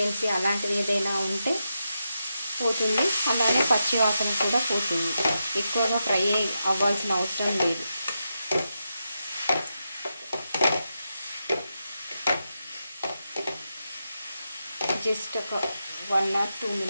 అలాంటిది ఏదైనా ఉంటే పోతుంది, అలానే పచ్చి వాసన కూడా పోతుంది. ఎక్కువగా ఫ్రై అవ్వాల్సిన అవసరం లేదు. జస్ట్ ఒక 1 or 2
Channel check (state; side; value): inverted; both; correlation -0.87